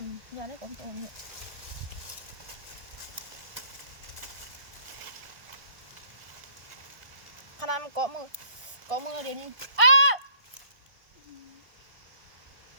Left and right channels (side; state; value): left; late; 1.5 ms